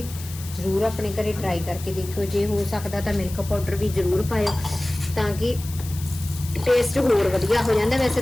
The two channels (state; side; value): noise; left; hiss, 14 dB below the sound